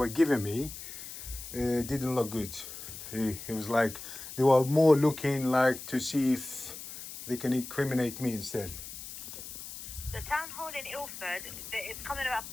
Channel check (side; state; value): left; noise; hiss, 11 dB below the sound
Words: giving me didn't look good. It was like they were more looking like to see if they can incriminate me instead. The town hall in Ilford, it's coming up